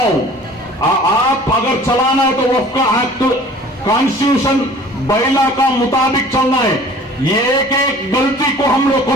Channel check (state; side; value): normal; both; correlation 0.48